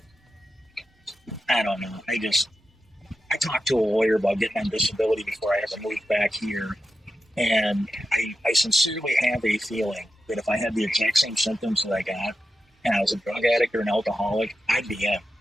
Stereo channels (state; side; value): normal; both; correlation 0.90